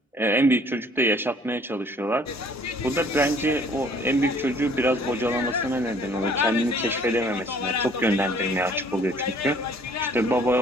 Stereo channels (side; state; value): both; normal; correlation 0.57